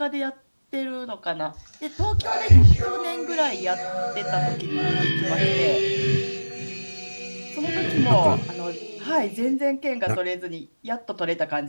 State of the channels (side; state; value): both; inverted; correlation -1.00